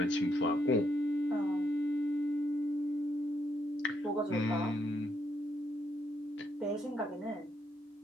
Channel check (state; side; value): normal; both; correlation 0.76